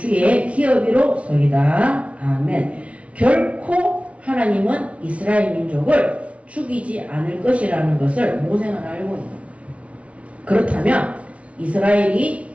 기업이로소이다. 아멘. 결코 하나님은 이스라엘 민족을 죽이지 않을 것이라는 것을 모세는 알고 있는 거예요. 그렇다면 이스라엘이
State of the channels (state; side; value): late; left; 0.063 ms